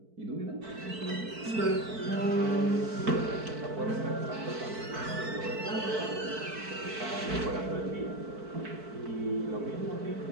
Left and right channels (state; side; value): late; left; 4.5 ms